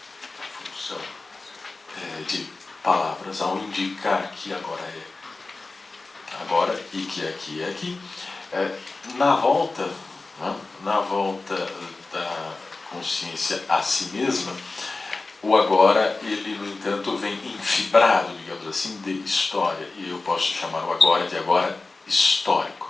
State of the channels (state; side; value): quieter; right; 3.5 dB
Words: a função de palavras, ao indicar que agora é agora e que aqui é aqui, na volta da consciência a si mesma, o agora, ele, no entanto, vem infibrado, digamos assim, de história. E eu posso chamar o agora de agora